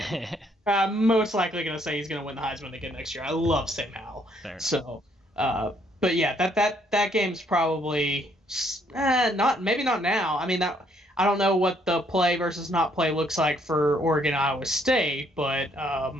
Most likely going to say he's going to win the Heisman again next year. I love Sam Howell. So, but yeah, that game's probably maybe not now. I mean I don't know what the play versus not play looks like for Oregon Iowa State, but I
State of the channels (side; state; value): both; normal; correlation 0.68